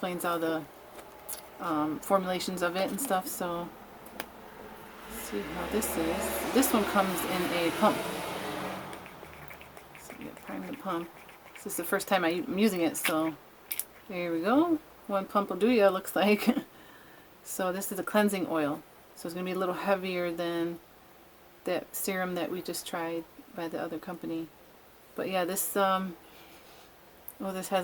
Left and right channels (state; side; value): identical; both; correlation 1.00